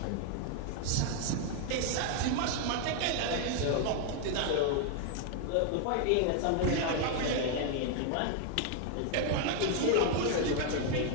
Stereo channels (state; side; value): different; both; correlation 0.00